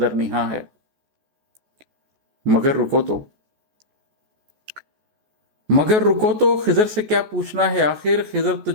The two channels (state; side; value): late; left; 14 ms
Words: نہاں ہے؟ مگر رکو تو خضر سے کیا پوچھنا ہے آخر؟ خضر تو